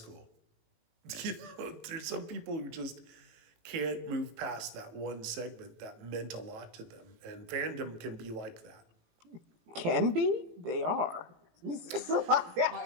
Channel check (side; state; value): left; late; 18 ms